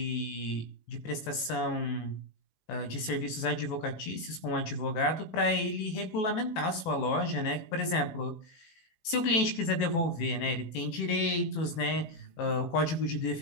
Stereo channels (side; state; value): right; late; 18 ms